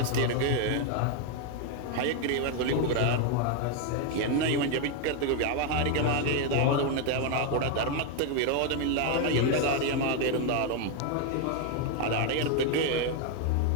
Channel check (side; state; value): both; different; correlation 0.01